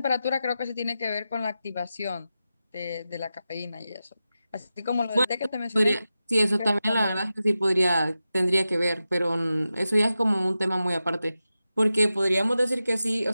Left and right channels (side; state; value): both; inverted; correlation -0.92